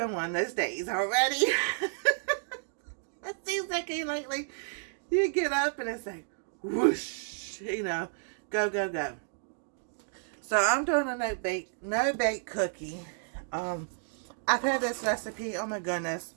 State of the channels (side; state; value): left; silent; digital silence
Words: one of those days already. It seems like lately you get up and it's like whoosh, go go go. So I'm doing a no bake cookie. I've had this recipe. Oh my goodness.